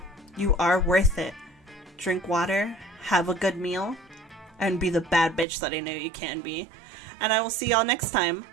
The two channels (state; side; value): drops out; left; at 5.5 s